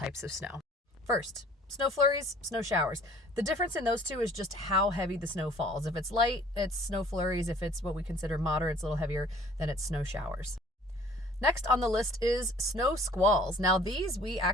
of snow. First, snow flurries, snow showers. The difference in those two is just how heavy the snow falls. If it's light, it's snow flurries. If it's what we consider moderate, it's a little heavier, then it's snow showers. Next on the list is snow squalls. Now these we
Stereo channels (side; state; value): both; normal; correlation 0.53